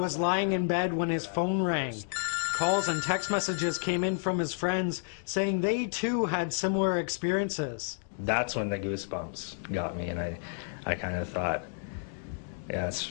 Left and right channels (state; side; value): silent; right; digital silence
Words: lying in bed when his phone rang. Calls and text messages came in from his friends saying they too had similar experiences. That's when the goosebumps got me, and I kind of thought, yeah, it's